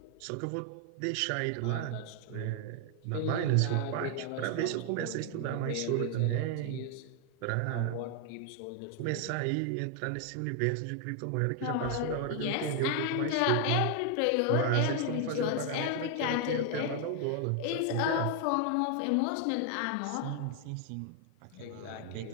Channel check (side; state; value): both; different; correlation 0.00